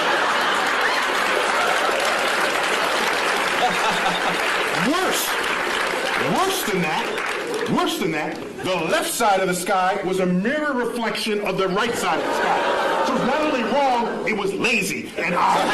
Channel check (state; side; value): identical; both; correlation 1.00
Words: Worse than that, the left side of the sky was a mirror reflection of the right side of the sky. So it's not only wrong, it was lazy and So obvious.